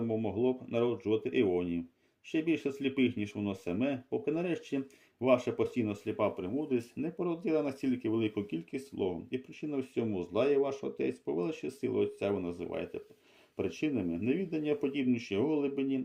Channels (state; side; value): identical; both; correlation 1.00